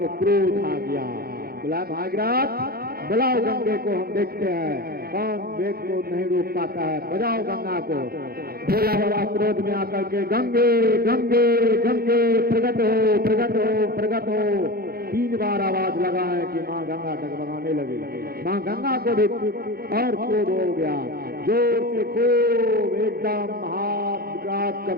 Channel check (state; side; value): late; left; 0.44 ms